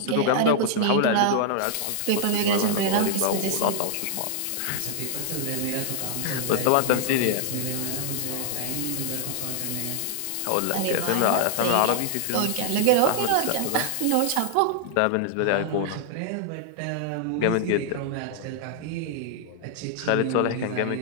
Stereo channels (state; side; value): different; both; correlation -0.01